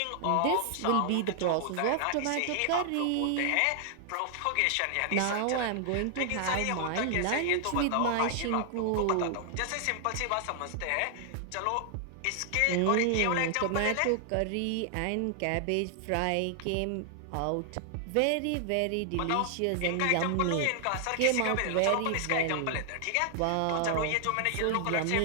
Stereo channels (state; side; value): different; both; correlation 0.00